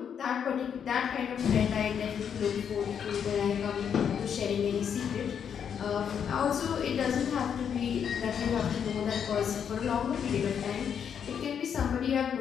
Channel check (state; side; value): quieter; right; 7.9 dB